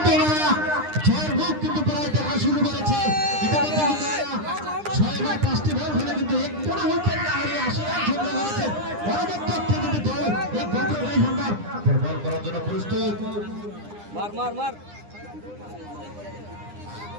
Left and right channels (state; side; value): late; left; 9.9 ms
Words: ওরা ছয়ের মুখ কিন্তু প্রায় দেখা শুরু করেছে ইতিমধ্যে কিন্তু 6 বা 5টি বল হলে কিন্তু এক কোনো উইকেট না হারিয়ে 80 রান সংগ্রহ করেছে পরবর্তীতে কিন্তু দল এই গোপাল রায় সম্ভব বল করার জন্য প্রস্তুত মার মার মার